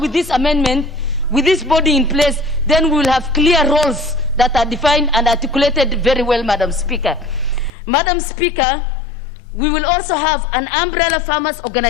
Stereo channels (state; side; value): drops out; right; at 7.7 s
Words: this amendment, with this body in place, then we will have clear roles that are defined and articulated very well, Madam Speaker. Madam Speaker, we will also have an umbrella farmers